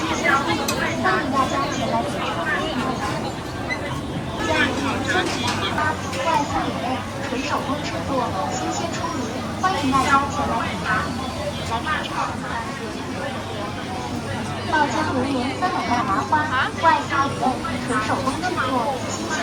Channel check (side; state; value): both; identical; correlation 1.00